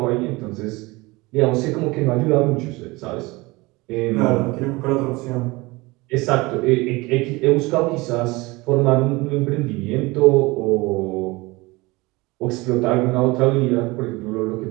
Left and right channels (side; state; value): left; quieter; 23.0 dB